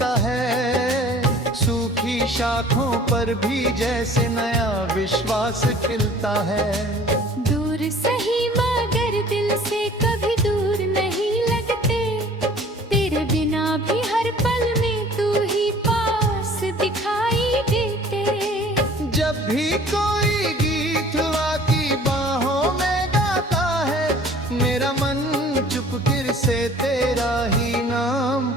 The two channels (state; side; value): normal; both; correlation 0.49